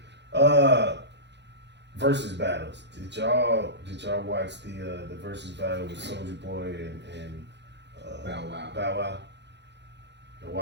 Versus battles. Did y'all watch the versus battle with Soulja Boy and Bow Wow. Bow Wow? Y'all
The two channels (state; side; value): late; left; 0.51 ms